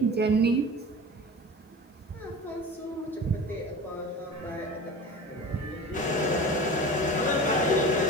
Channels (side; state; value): both; normal; correlation 0.34